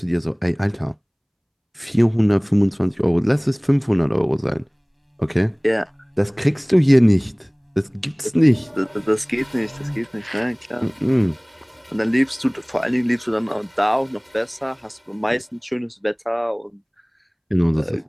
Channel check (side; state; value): both; identical; correlation 1.00